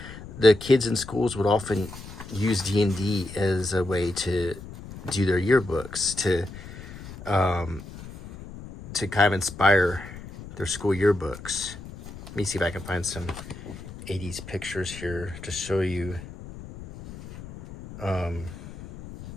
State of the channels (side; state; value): left; noise; rumble, 14 dB below the sound